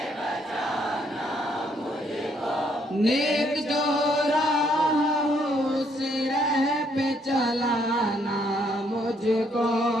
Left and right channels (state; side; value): normal; both; correlation 0.70